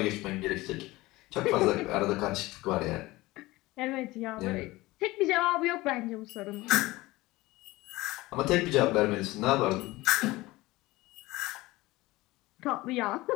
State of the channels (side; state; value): right; quieter; 19.6 dB